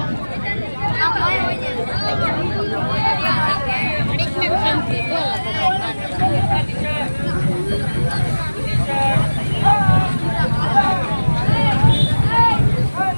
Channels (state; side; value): inverted; both; correlation -1.00